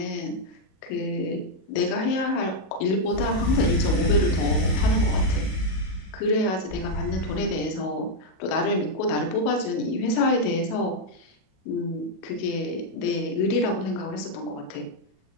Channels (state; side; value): late; right; 37 ms